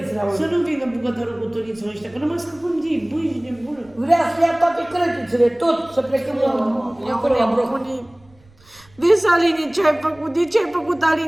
Să nu vină bucătărul cu Duniță ăștia, că nu mai scăpăm de ei, băi, de bună. Vrea să ia toate crătițele, tot, să plecăm acolo la bloc. Vezi, Aline, ce ai făcut? De ce ai făcut,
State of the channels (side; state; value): right; noise; rumble, 28 dB below the sound